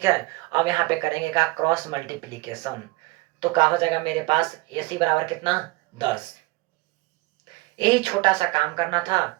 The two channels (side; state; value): left; quieter; 22.1 dB